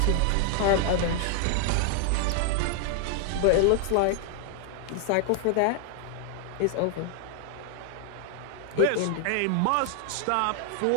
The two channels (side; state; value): both; different; correlation 0.00